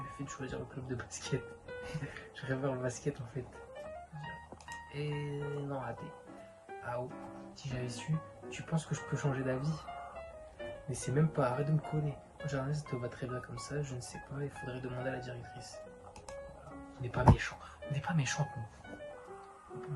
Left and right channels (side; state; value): both; identical; correlation 1.00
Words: fait de choisir le club de basket. Je préfère le basket en fait. Et non, raté. Ah oh, si j'avais su, tu penses que je peux changer d'avis? Mais c'est même pas, arrête de me coller. Le jardinage, ça te va très bien comme ça, je ne sais pas, il faudrait demander à la directrice. Voilà. On n'est pas méchants. On n'est pas méchantes, nous. On n'est pas